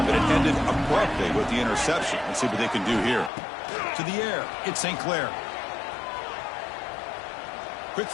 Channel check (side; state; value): right; drops out; at 3.3 s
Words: but it ended abruptly with the interception. Let's see what they can do here. To the air, it's St. Clair. Quick